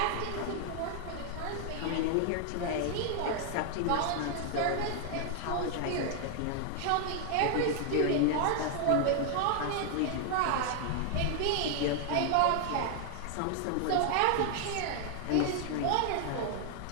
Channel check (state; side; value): different; both; correlation 0.00